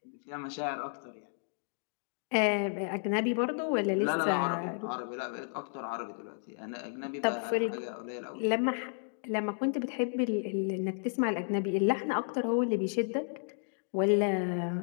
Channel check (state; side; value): silent; right; digital silence